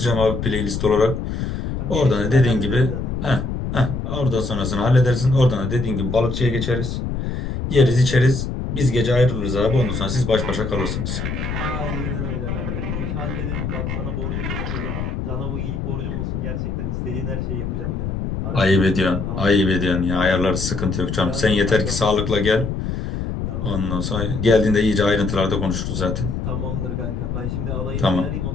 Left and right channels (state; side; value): noise; left; rumble, 3 dB below the sound